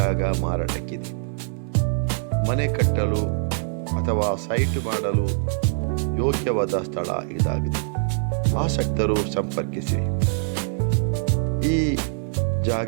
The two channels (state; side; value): silent; left; digital silence